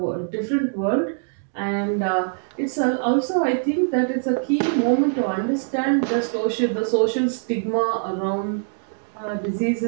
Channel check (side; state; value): left; silent; digital silence